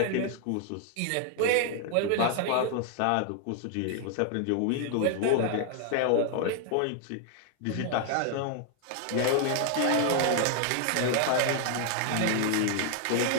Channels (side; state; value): both; different; correlation 0.00